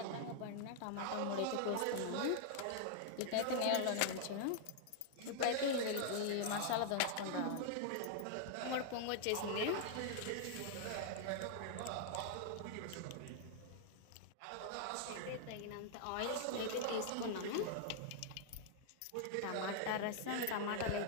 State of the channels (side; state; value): both; different; correlation -0.01